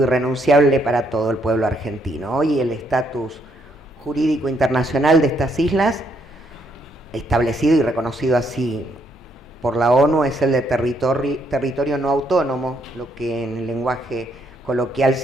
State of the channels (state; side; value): normal; both; correlation 0.73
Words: irrenunciable para todo el pueblo argentino. Hoy el estatus jurídico internacional de estas islas, establecido y reconocido así por la ONU, es el de territorio no autónomo, lo que en el lenguaje coloquial